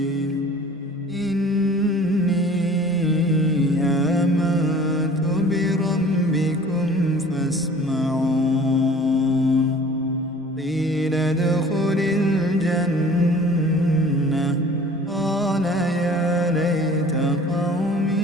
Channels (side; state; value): both; normal; correlation 0.47